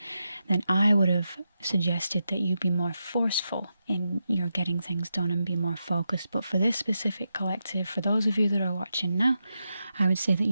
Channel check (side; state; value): both; inverted; correlation -0.87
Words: then I would have suggested that you be more forceful in your getting things done and be more focused. But for this specific collective, for those of you that are watching now, I would say that